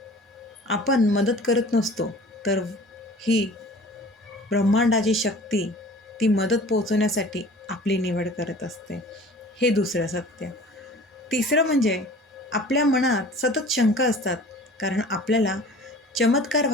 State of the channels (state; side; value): normal; both; correlation 0.44